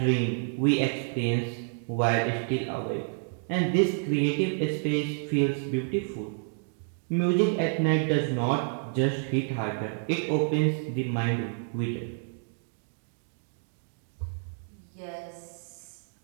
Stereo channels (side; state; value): left; silent; 58 dB below the other